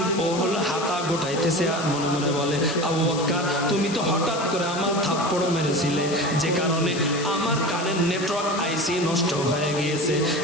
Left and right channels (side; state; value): left; noise; hiss, 10 dB below the sound